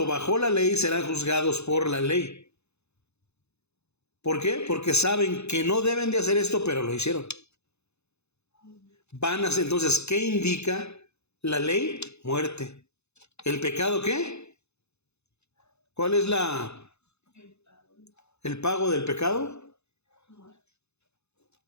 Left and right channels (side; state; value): right; late; 0.81 ms